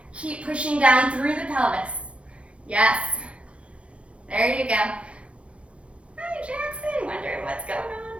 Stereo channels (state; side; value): late; left; 0.061 ms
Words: Keep pushing down through the pelvis. Yes. There you go. Hi, Jackson. Wondering what's going